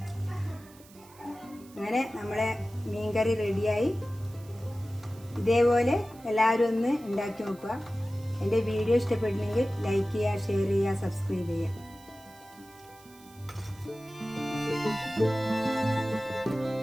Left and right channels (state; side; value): noise; right; hiss, 24 dB below the sound